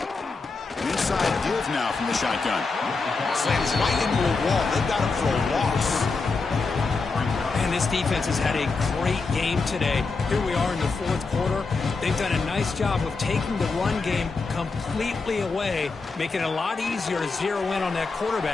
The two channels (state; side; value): quieter; right; 4.2 dB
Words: inside give now from the shotgun. Slams right into a wall. They've got him for a loss. And this defense has had a great game today. Here we are in the fourth quarter. They've done a nice job of taking the run game completely away, making it a lot easier to zero in on that